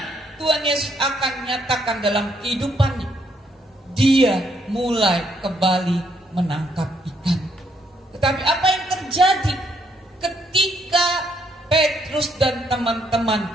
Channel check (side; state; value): both; normal; correlation 0.72